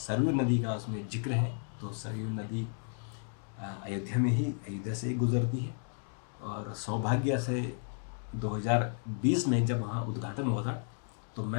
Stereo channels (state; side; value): silent; right; 56 dB below the other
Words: नदी का उसमें जिक्र है। तो सरयू नदी अयोध्या से गुजरती है और सौभाग्य से 2020 में जब वहाँ उद्घाटन हुआ था तो